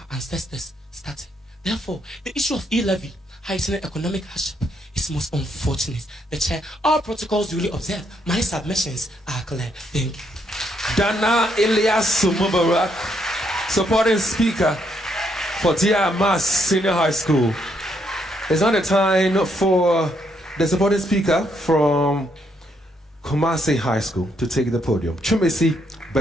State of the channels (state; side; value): normal; both; correlation 0.74